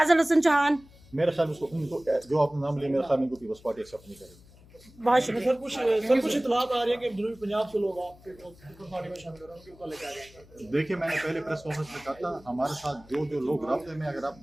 हसन चौहान, मेरे ख्याल में उनको जो आपने नाम लिया, मेरे ख्याल में उनको पीपल्स पार्टी एक्सेप्ट नहीं करेगी। बहुत शुक्रिया। सर कुछ इतलात आ रही है कि जनूबी पंजाब से लोग आपके पार्टी में शामिल हो रहे हैं, उनके ऊपर लेके आ रहे हैं। देखिए, मैंने पहले प्रेस कॉन्फ्रेंस में कहा था, हमारे साथ जो लोग राब्ते में, अगर आप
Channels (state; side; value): noise; left; hum, 24 dB below the sound